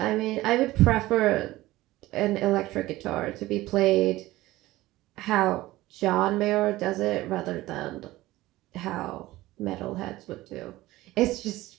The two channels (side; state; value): left; quieter; 17.6 dB